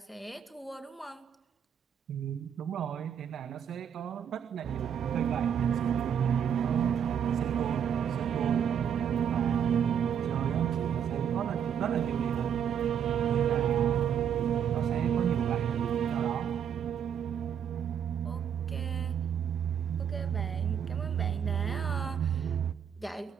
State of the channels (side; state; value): left; quieter; 8.4 dB